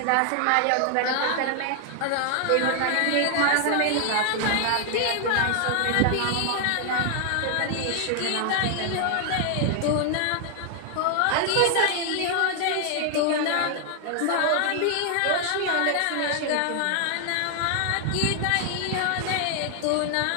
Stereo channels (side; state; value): both; different; correlation 0.00